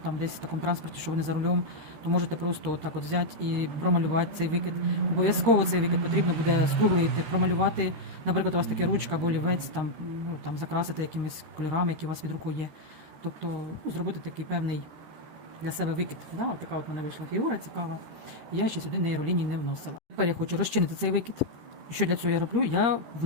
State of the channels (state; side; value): late; left; 13 ms